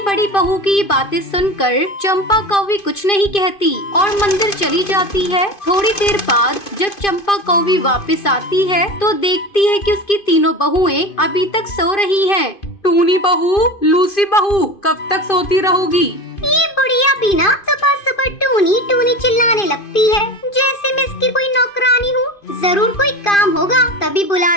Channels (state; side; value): late; right; 2.5 ms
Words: बड़ी बहू की ये बातें सुनकर चंपा कौवी कुछ नहीं कहती और मंदिर चली जाती है। थोड़ी देर बाद जब चंपा कौवी वापस आती है तो देखती है कि उसकी तीनों बहुएं अभी तक सो रही हैं। टूनी बहू, लूसी बहू, कब तक सोती रहोगी? ये बुढ़िया भी ना सुबह सुबह टूनी टूनी चिल्लाने लगती है, जैसे मैं इसकी कोई नौकरानी हूँ। जरूर कोई काम होगा तभी बुला